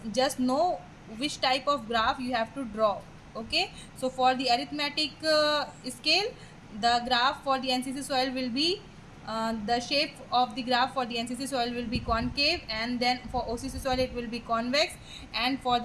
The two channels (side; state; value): both; identical; correlation 1.00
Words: just know which type of graph you have to draw. Okay, so for the arithmetic scale, the graph for the NCC soil will be the shape of the graph for the NCC soil will be concave, and then for OCC soil it will be convex, and for